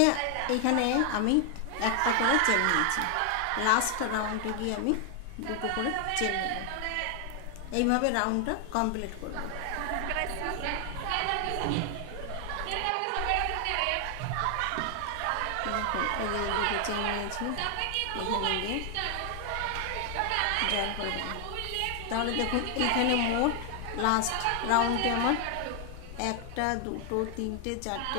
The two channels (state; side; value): different; both; correlation 0.00